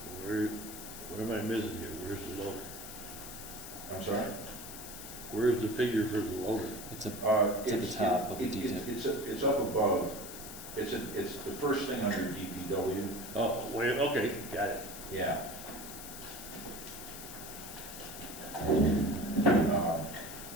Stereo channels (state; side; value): noise; left; hiss, 11 dB below the sound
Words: What am I missing here? Where's the loader? I'm sorry? Where's the figure for the loader? It's at the top of the detail. It's up above. It's the first thing under DPW. Oh, wait, okay, got it. Yeah.